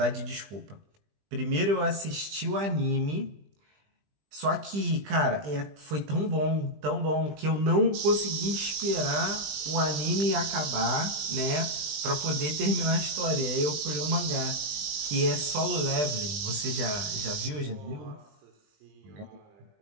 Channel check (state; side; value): late; left; 20 ms